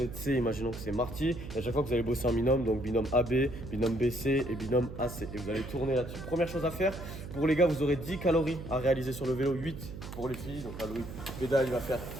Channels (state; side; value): noise; right; hum, 10 dB below the sound